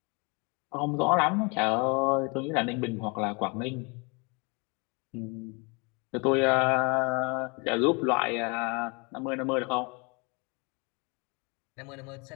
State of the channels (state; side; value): quieter; right; 30.9 dB